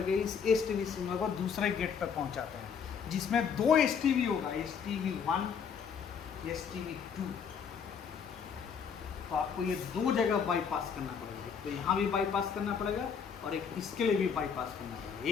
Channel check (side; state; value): right; quieter; 6.7 dB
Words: इस STB सिग्नल को दूसरे गेट पर पहुंचाते हैं, जिसमें 2 STB होगा, STB1, STB2। तो आपको ये 2 जगह बाईपास करना पड़ेगा। तो यहाँ भी बाईपास करना पड़ेगा और एक इसके लिए भी बाईपास करना पड़ेगा।